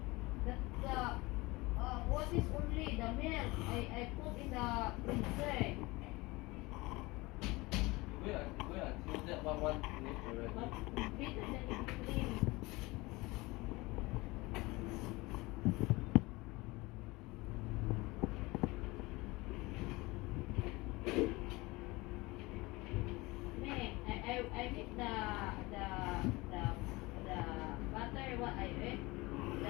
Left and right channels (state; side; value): quieter; right; 22.5 dB